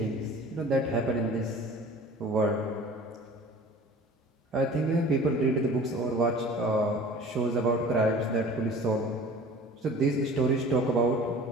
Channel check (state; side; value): normal; both; correlation 0.44